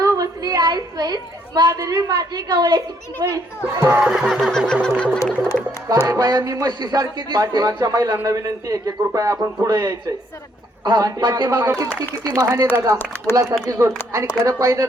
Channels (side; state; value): both; normal; correlation 0.69